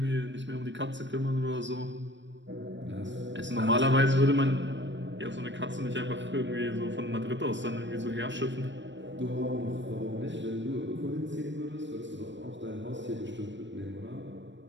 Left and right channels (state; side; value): late; left; 0.53 ms